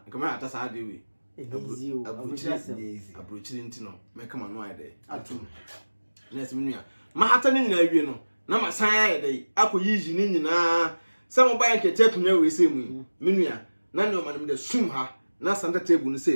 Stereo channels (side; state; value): both; inverted; correlation -1.00